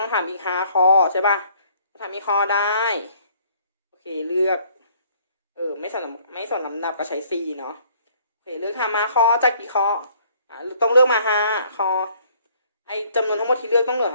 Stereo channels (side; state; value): both; inverted; correlation -0.61